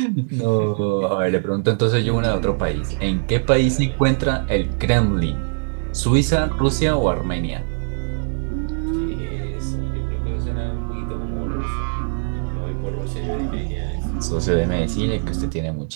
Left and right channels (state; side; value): silent; left; digital silence